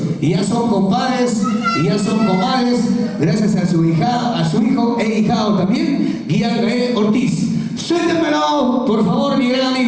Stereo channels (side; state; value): both; identical; correlation 1.00